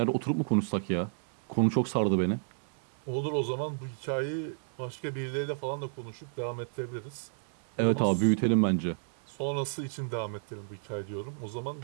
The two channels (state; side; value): silent; left; 57 dB below the other